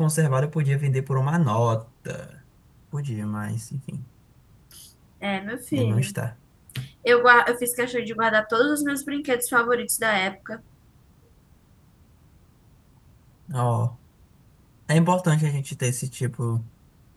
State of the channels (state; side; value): identical; both; correlation 1.00